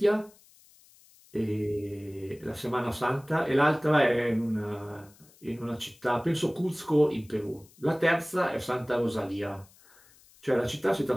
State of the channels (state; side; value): noise; left; hiss, 27 dB below the sound